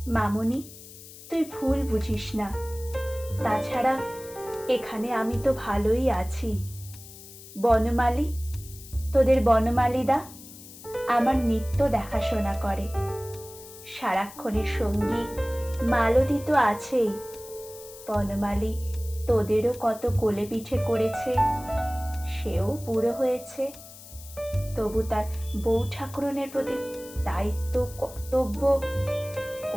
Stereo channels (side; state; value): left; noise; hiss, 17 dB below the sound